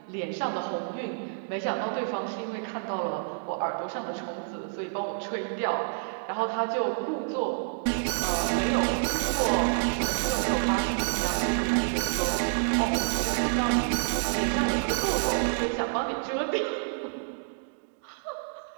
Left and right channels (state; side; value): silent; left; digital silence